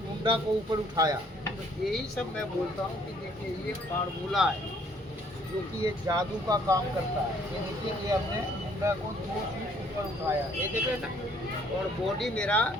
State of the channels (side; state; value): both; normal; correlation 0.62